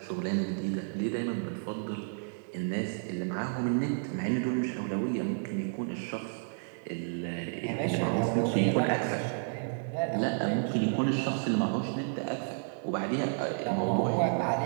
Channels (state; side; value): silent; left; digital silence